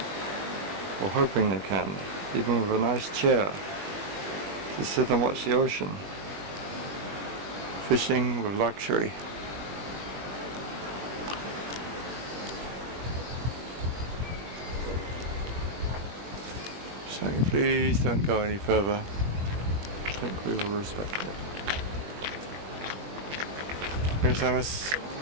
or hoping they can, even with a nice chair to sit and watch the ocean. Fishing with luxury. Saying please don't go any further. I think we will respect that. Here's Amos.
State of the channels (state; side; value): late; left; 21 ms